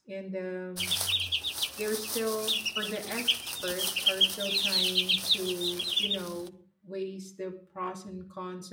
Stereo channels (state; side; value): identical; both; correlation 1.00